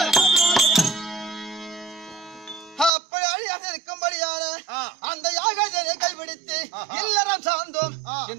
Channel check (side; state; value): left; drops out; at 2.9 s